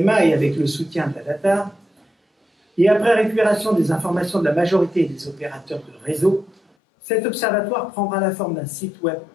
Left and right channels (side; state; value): right; drops out; at 6.6 s